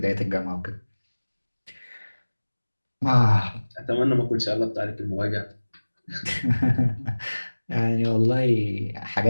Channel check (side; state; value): both; inverted; correlation -1.00